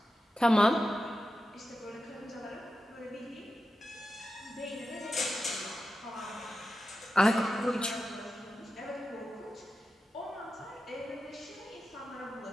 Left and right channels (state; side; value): normal; both; correlation 0.91